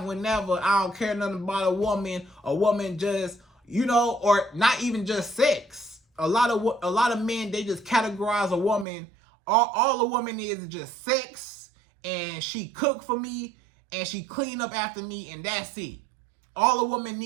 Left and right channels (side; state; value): left; drops out; at 8.8 s